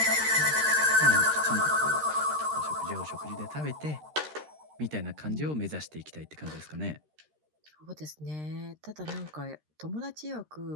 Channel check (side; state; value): left; late; 13 ms